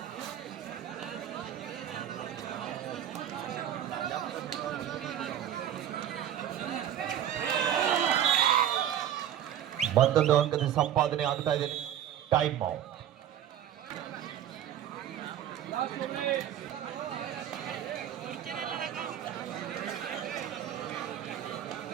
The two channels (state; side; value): quieter; left; 10.6 dB